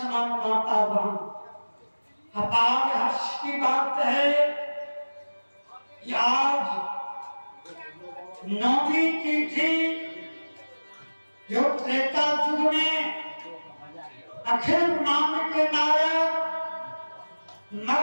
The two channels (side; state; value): both; inverted; correlation -1.00